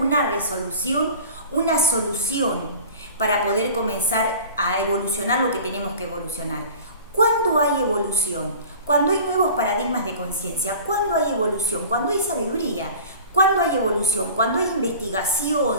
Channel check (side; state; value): both; inverted; correlation -0.41